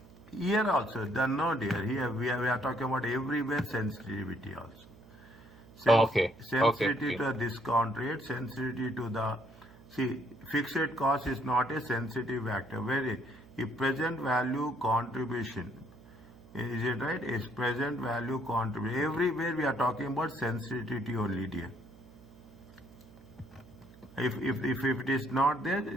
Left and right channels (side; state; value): right; noise; hum, 22 dB below the sound